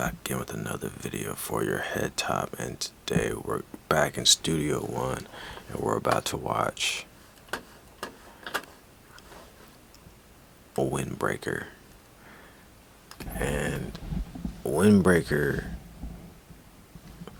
again with another video for your head top, and today we're back in Studio One, and we're about to watch a Windbreaker. And Windbreaker,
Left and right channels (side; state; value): both; identical; correlation 1.00